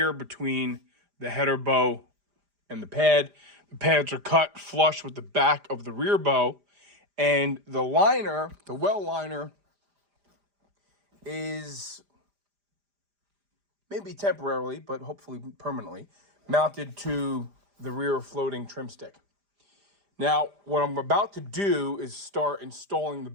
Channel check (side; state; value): left; late; 5.0 ms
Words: between the header bow and the pad. The pads are cut flush with the back of the rear bow. And the liner, the well liner, is maybe temporarily, but hopefully permanently, mounted to the rear floating trim stick. Now, what I'm about to do is start installing the